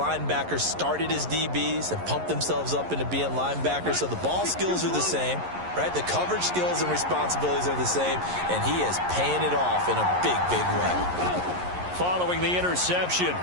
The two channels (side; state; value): left; late; 11 ms